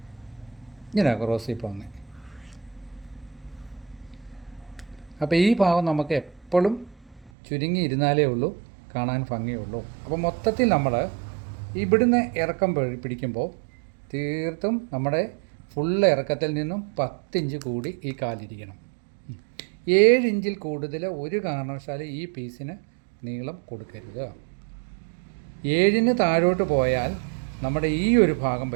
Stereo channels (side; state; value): left; drops out; at 7.3 s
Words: ക്രോസിൽ പോകുന്നത്. അപ്പോൾ ഈ ഭാഗം നമുക്ക് എപ്പോഴും ചുരുങ്ങി ഇരുന്നാലേ ഉള്ളൂ കാണാൻ ഭംഗിയുള്ളൂ. അപ്പോൾ മൊത്തത്തിൽ നമ്മൾ ഇവിടുന്ന് ഇറക്കം പിടിക്കുമ്പോൾ തീർത്തും നമ്മുടെ ഫുള്ള് ഇറക്കത്തിൽ നിന്നും 10 ഇഞ്ച് കൂടി ഈ കാലിരിക്കണം. 7 ഇഞ്ചിൽ കൂടുതൽ ഒരു കാരണവശാലും ഈ പീസിന് നീളം കൊടുക്കരുത്. 7-ന് താഴോട്ട് പോയാൽ നമ്മുടെ ഈ ഒരു ഭാഗം